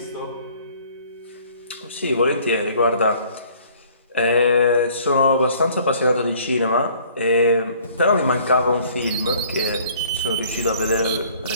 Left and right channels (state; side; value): inverted; both; correlation -0.56